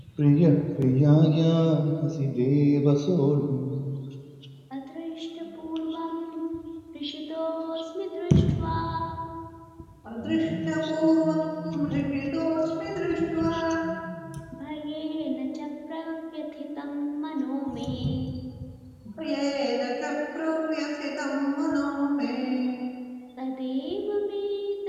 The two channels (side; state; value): both; identical; correlation 1.00